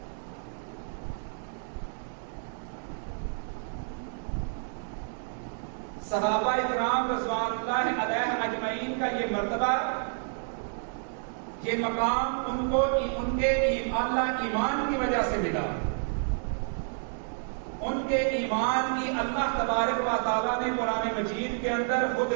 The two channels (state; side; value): silent; left; digital silence